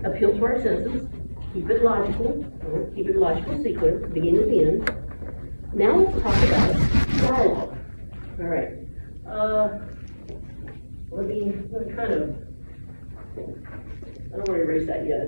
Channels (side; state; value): both; inverted; correlation -1.00